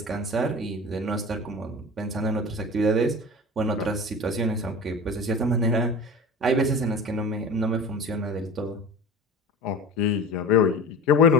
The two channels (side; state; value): both; normal; correlation 0.35